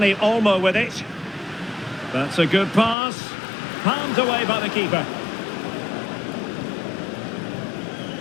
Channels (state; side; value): drops out; right; at 3.0 s